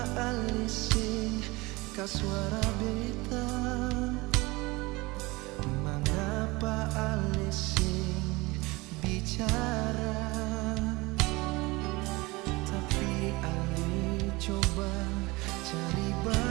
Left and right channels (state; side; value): quieter; left; 23.1 dB